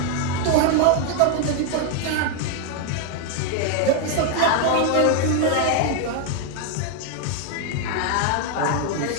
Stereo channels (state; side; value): different; both; correlation 0.01